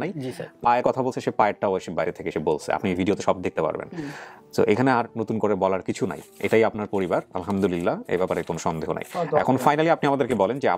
নাই। পায়ের কথা বলছে, সে পায়েরটাও এসে বাইরে থেকে এসে বলছে, আপনি ভিডিওতে সব দেখতে পারবেন। তো এখানে আর নতুন করে বলার কিছু নাই, এটাই আপনার পরিবার, আলহামদুলিল্লাহ, এই ব্যাপারে কোনো সন্দেহ নাই। এখন ফাইনালি আপনি আমাদেরকে বলেন যে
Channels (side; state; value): both; identical; correlation 1.00